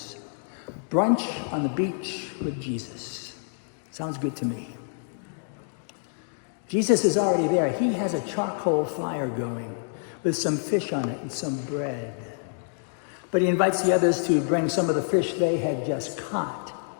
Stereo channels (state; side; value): silent; right; digital silence